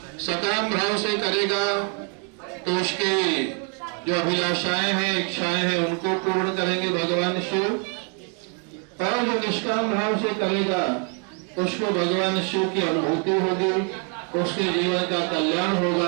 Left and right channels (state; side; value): quieter; left; 39.7 dB